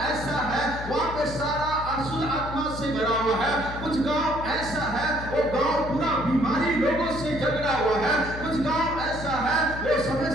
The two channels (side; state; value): left; noise; hum, 10 dB below the sound